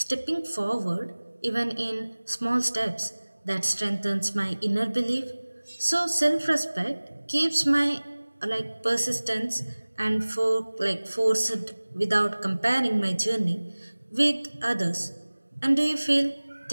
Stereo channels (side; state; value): both; inverted; correlation -1.00